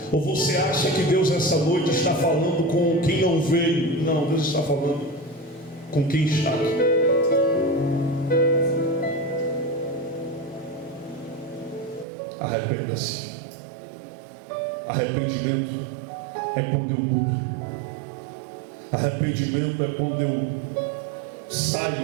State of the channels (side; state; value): left; drops out; at 12.1 s